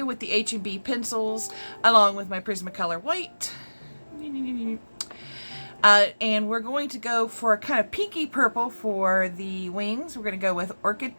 with the H&B pencils along with my Prismacolor white. And we're going to go for a kind of pinky purple for the wings. We're going to go with Orchid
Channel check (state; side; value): inverted; both; correlation -1.00